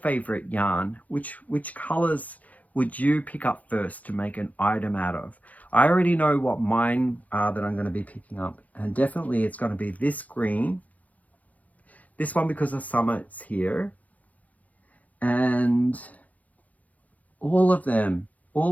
yarn, which colors would you pick up first to make an item out of? I already know what mine are that I'm going to be picking up, and definitely it's going to be this green, this one because the summer's here, and all of them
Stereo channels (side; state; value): right; late; 0.075 ms